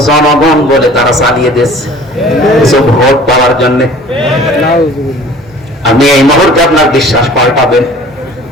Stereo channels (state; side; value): normal; both; correlation 0.48